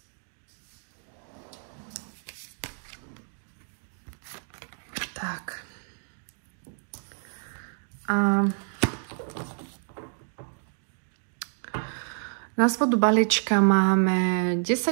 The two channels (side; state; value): left; silent; digital silence